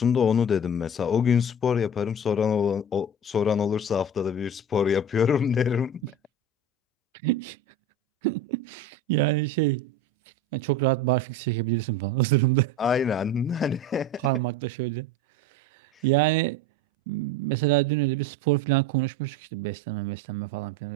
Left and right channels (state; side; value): normal; both; correlation 0.31